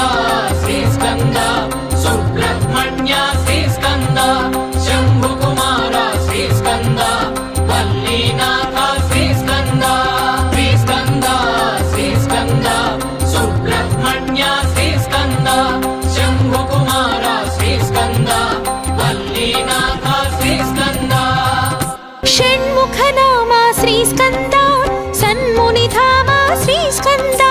श्रीस्कन्द सुब्रह्मण्य श्रीस्कन्द शम्भुकुमार श्रीस्कन्द वल्लीनाथ श्रीस्कन्द श्रीस्कन्द श्रीस्कन्द सुब्रह्मण्य श्रीस्कन्द शम्भुकुमार श्रीस्कन्द वल्लीनाथ श्रीस्कन्द षण्मुखनाम श्रीस्कन्द सन्मुनिधाम श्रीस्कन्द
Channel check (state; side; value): identical; both; correlation 1.00